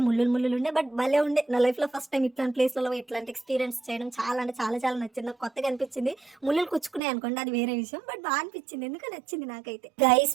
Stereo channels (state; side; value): drops out; left; at 7.0 s